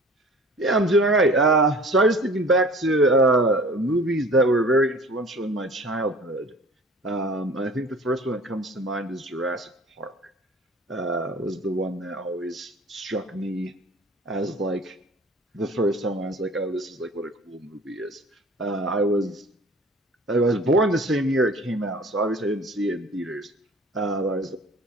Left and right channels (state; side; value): normal; both; correlation 0.46